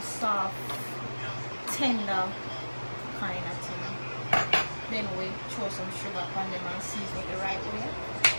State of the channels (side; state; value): both; inverted; correlation -1.00